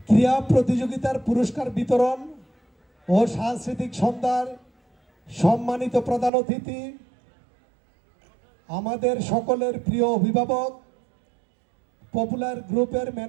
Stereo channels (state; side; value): drops out; left; at 6.3 s